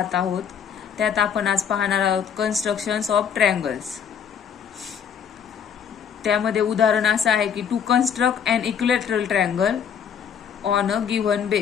आहोत। त्यात आपण आज पाहणार आहोत कन्स्ट्रक्शन्स ऑफ ट्रायंगल्स। त्यामध्ये उदाहरण असं आहे की to construct an equilateral triangle on a given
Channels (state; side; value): quieter; right; 7.7 dB